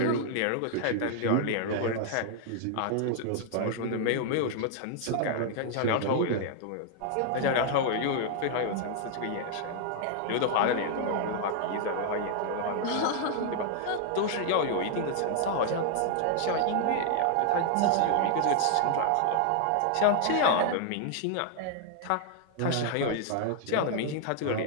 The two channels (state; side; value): different; both; correlation 0.00